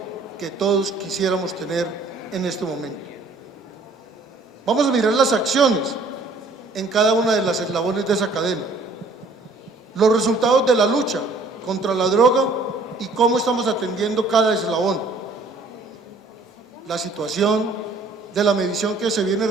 que todos quisiéramos tener en este momento. Vamos a mirar las acciones en cada una de las eslabones de esa cadena, los resultados de la lucha contra la droga y cómo estamos atendiendo cada eslabón, la situación de la medición que se viene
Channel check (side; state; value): left; quieter; 3.3 dB